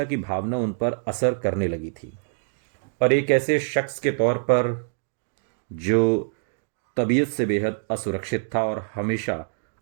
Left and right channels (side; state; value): left; silent; digital silence